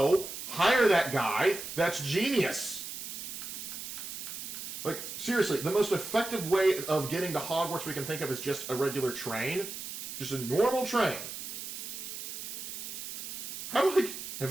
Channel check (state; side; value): noise; right; hiss, 8 dB below the sound